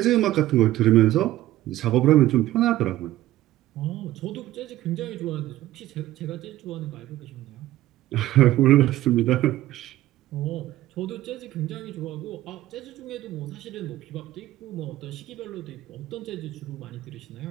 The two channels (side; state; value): left; quieter; 15.0 dB